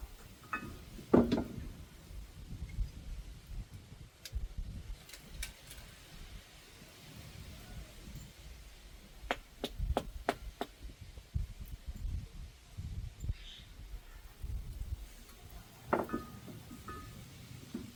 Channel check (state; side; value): identical; both; correlation 1.00